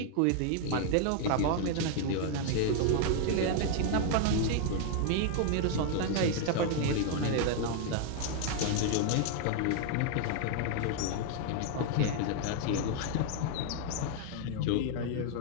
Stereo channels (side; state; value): both; different; correlation 0.00